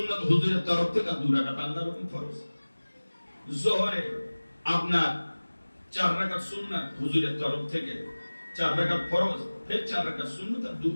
হুজুরের তরফ থেকে, 2 রাকাত আল্লাহর হুকুম ফরজ। যোহরে আপনার 4 রাকাত সুন্নাত হুজুরের তরফ থেকে, 4 রাকাত ফরজ, ফের 4 রাকাত সুন্নাত আর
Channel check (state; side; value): inverted; both; correlation -1.00